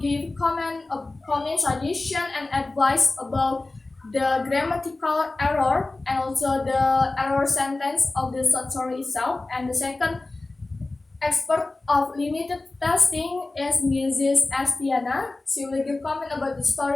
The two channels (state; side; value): quieter; right; 3.1 dB